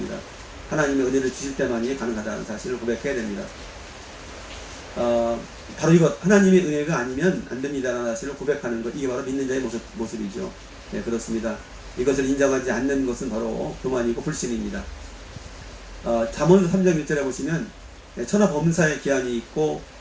하나님의 은혜를 주실 때만이 가능하다는 사실을 고백해야 됩니다. 바로 이것, 하나님의 은혜가 아니면 안 됩니다라는 사실을 고백하는 것, 이게 바로 믿는 자의 모습이죠. 네, 그렇습니다. 이것을 인정하지 않는 것은 바로 교만이고 불신입니다. 잠언 3장 1절에 보시면 천하 범사의 기한이 있고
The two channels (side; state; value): both; identical; correlation 1.00